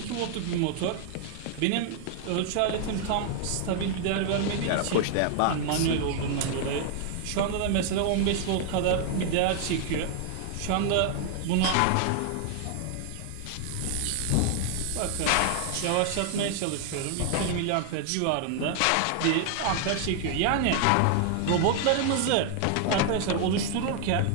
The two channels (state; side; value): different; both; correlation 0.00